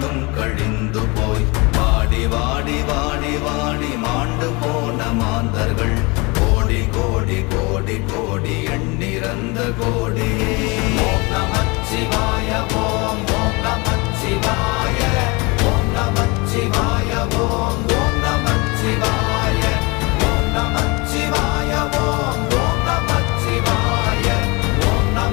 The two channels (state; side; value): quieter; right; 27.0 dB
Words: கழிந்து போய் வாடி வாடி வாடி வாடி மாண்டு போன மாந்தர்கள் கோடி கோடி கோடி கோடி எண்ணிறந்த கோடி. ஓம் நமச்சிவாய ஓம் ஓம் நமச்சிவாய ஓம் நமச்சிவாய ஓம் ஓம் நமச்சிவாய ஓம் நமச்சிவாய ஓம் ஓம் நமச்சிவாய ஓம்